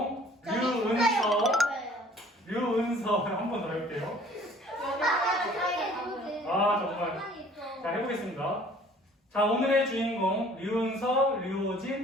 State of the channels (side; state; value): both; normal; correlation 0.53